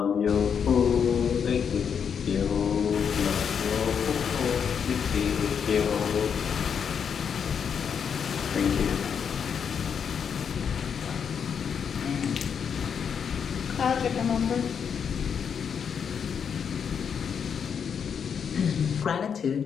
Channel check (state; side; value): quieter; right; 7.2 dB